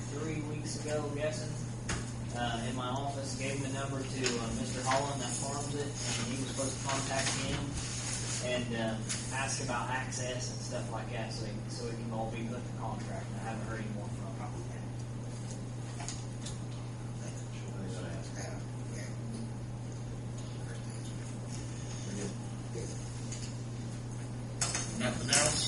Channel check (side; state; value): both; identical; correlation 1.00